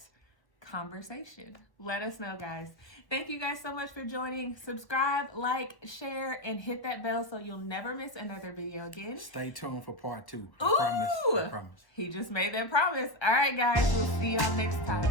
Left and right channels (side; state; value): right; late; 1.1 ms